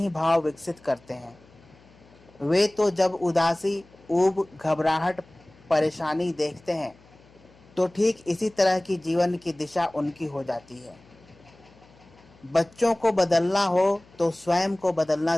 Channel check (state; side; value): noise; left; hum, 27 dB below the sound